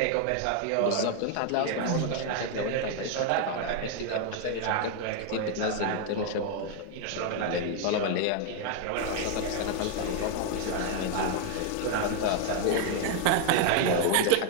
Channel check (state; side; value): different; both; correlation 0.00